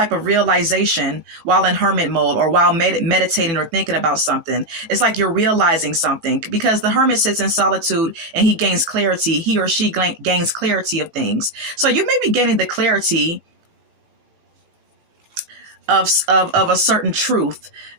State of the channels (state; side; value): late; left; 19 ms